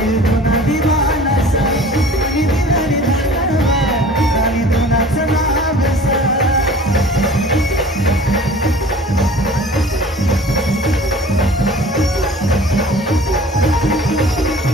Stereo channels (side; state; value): both; normal; correlation 0.45